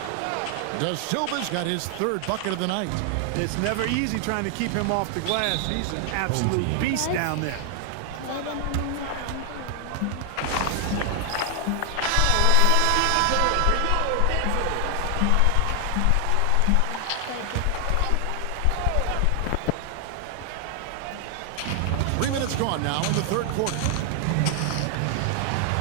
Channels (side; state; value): both; different; correlation 0.00